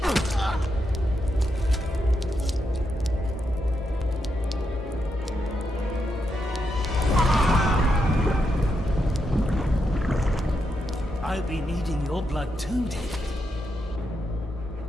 I'll be needing your blood too, David.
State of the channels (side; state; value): both; normal; correlation 0.83